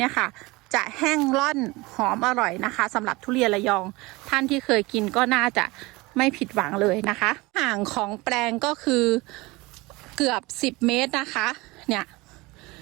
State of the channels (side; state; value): left; quieter; 22.9 dB